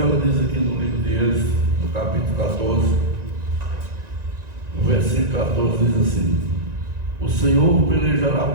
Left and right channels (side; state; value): left; late; 1.9 ms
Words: ela diz aqui no livro de Êxodo, no capítulo 14, no versículo 14, diz assim: o Senhor pelejará